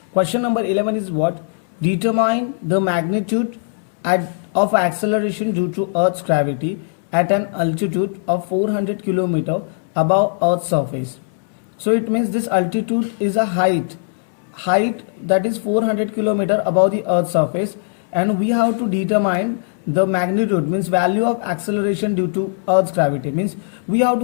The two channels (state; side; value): silent; right; digital silence